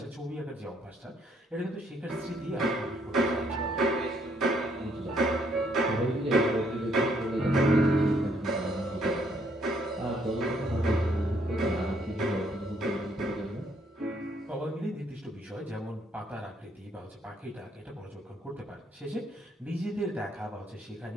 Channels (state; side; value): normal; both; correlation 0.69